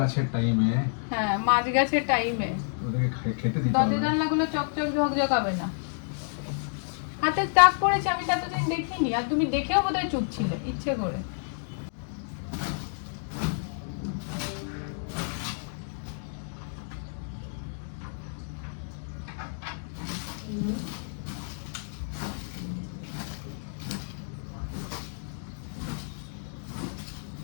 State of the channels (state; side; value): silent; right; digital silence